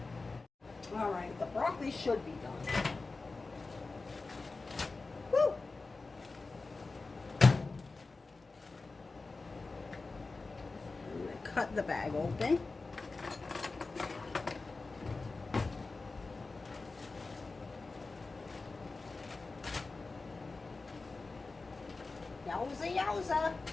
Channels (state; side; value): quieter; right; 3.7 dB